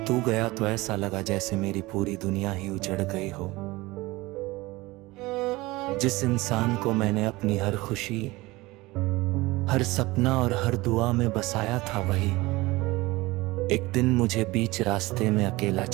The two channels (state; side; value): quieter; left; 20.8 dB